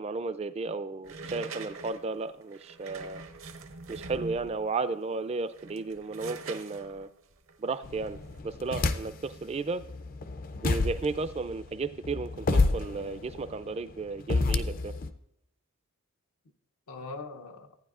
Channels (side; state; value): both; normal; correlation 0.57